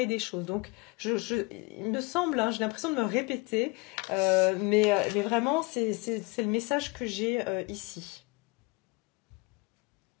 des choses. Donc, il me semble, hein, j'ai l'impression de me répéter, mais vraiment, c'est le message que j'ai ici.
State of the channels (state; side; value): quieter; right; 27.0 dB